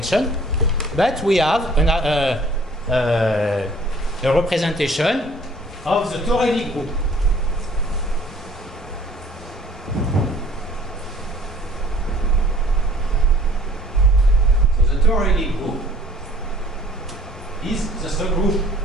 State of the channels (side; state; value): both; normal; correlation 0.54